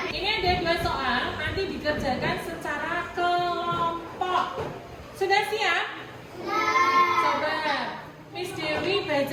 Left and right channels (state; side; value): identical; both; correlation 1.00